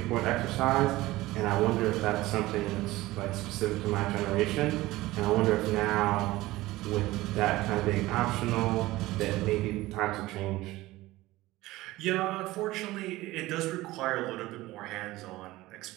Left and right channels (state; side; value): quieter; left; 18.2 dB